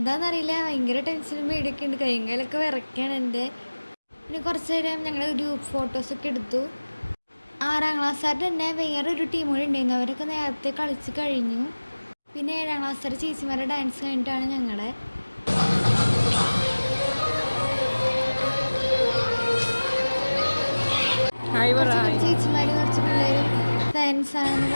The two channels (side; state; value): both; inverted; correlation -1.00